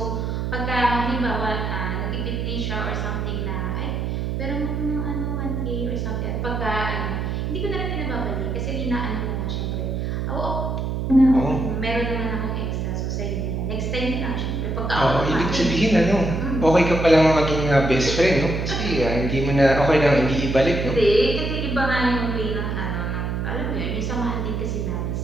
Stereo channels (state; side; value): noise; right; hum, 2 dB below the sound